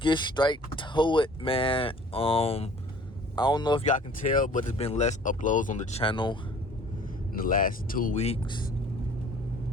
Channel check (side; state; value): both; normal; correlation 0.51